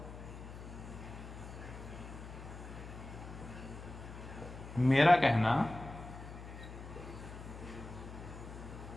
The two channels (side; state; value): left; noise; hum, 12 dB below the sound